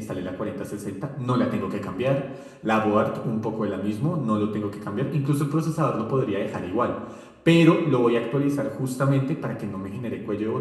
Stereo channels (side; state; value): both; identical; correlation 1.00